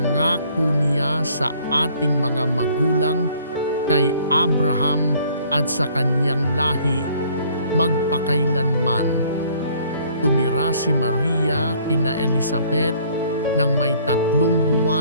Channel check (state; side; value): inverted; both; correlation -0.59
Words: niya sa ating mga magulang kay Abraham at sa kanyang lahi magpakailanman. Tumira si Maria kina Elizabeth ng may 3